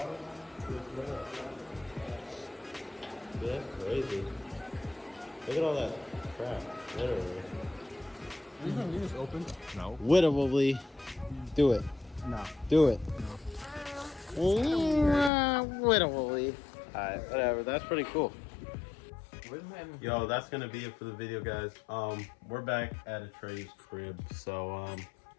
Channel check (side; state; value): right; drops out; at 15.3 s